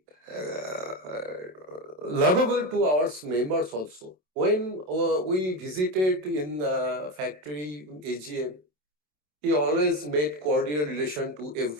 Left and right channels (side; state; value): left; late; 27 ms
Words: lovable to our members also. When we visited in factory AGM, he always made cordial relation to